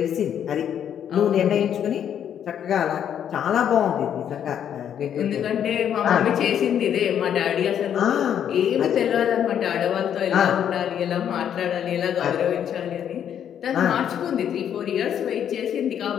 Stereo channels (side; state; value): right; quieter; 9.3 dB